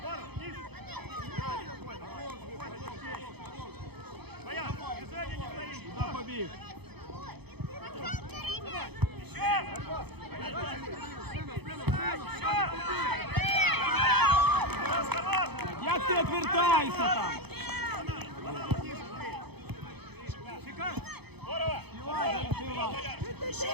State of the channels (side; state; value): left; late; 0.98 ms